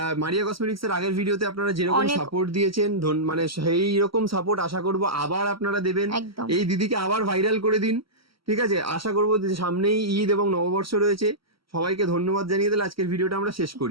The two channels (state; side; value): late; left; 0.75 ms